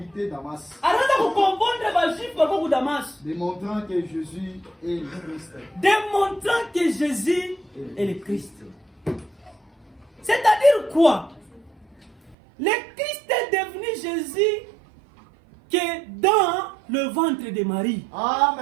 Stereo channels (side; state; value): left; drops out; at 12.4 s